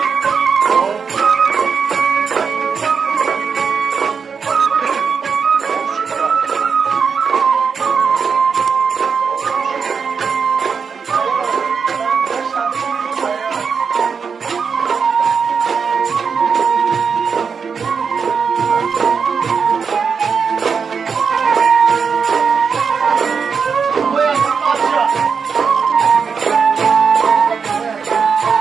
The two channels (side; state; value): left; quieter; 5.9 dB